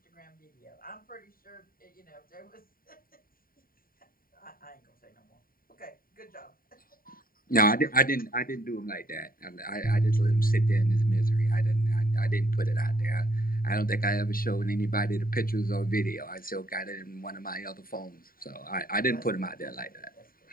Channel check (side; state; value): right; late; 0.42 ms